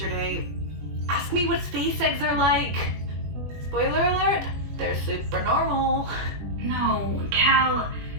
Ask me what space eggs are like. Spoiler alert, they're super normal. No, Cal,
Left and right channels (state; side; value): late; left; 21 ms